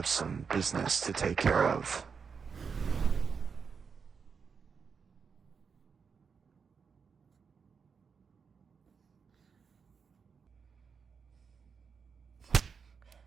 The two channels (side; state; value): left; quieter; 5.9 dB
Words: some business to take care of.